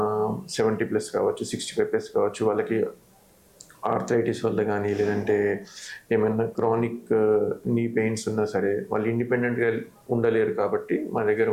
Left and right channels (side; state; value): both; identical; correlation 1.00